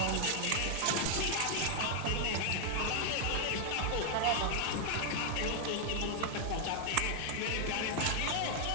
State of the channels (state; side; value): different; both; correlation 0.00